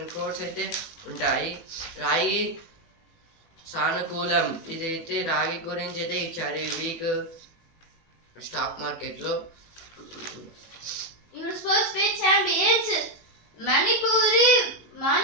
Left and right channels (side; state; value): right; late; 18 ms